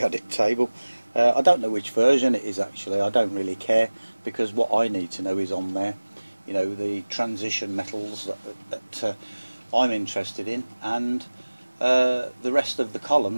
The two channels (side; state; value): both; inverted; correlation -1.00